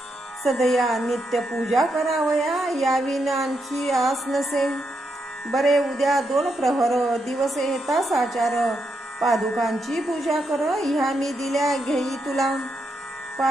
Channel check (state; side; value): normal; both; correlation 0.82